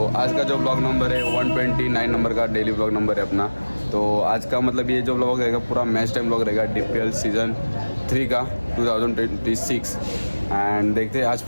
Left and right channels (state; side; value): inverted; both; correlation -1.00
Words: आज का जो ब्लॉग नंबर है 129 नंबर का डेली ब्लॉग नंबर है अपना। तो आज का मतलब ये जो ब्लॉग रहेगा पूरा मैच टाइम ब्लॉग रहेगा DPL सीज़न 3 का 2026। एंड देखते हैं आज